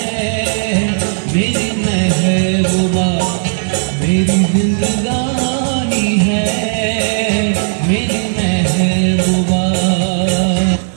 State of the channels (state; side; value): silent; left; digital silence